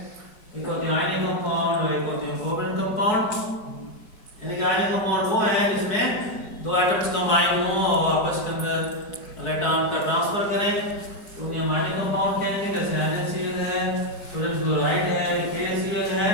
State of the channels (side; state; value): right; late; 4.7 ms